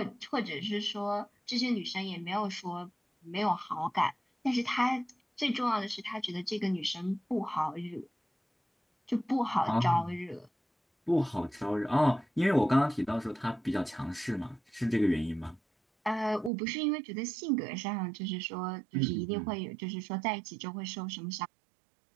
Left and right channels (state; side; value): drops out; left; at 16.5 s